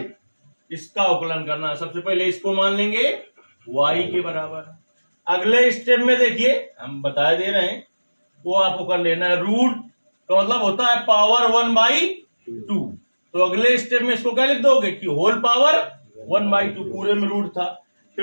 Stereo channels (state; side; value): inverted; both; correlation -1.00